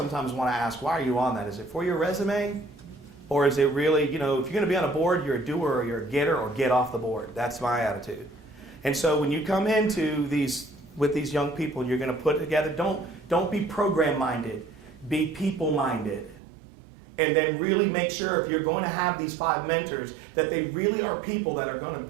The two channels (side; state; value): left; drops out; at 16.4 s